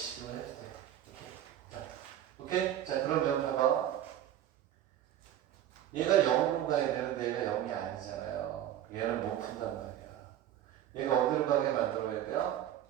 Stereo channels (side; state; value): left; quieter; 11.5 dB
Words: 이거 해도 돼. 오케이? 자, 그러면 봐봐. 얘가 0으로 가야 되는데 얘가 0이 아니잖아요. 얘는 못 푼단 말이야. 얘가 어디로 가게 만들어야 돼요?